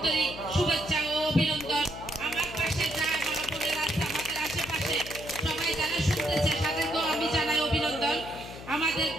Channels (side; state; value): left; noise; hum, 13 dB below the sound